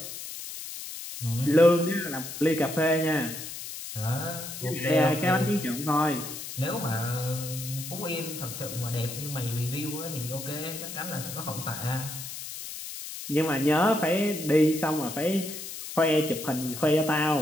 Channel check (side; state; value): left; noise; hiss, 9 dB below the sound